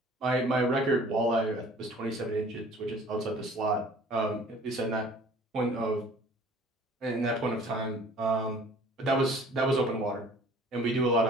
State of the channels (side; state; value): both; normal; correlation 0.51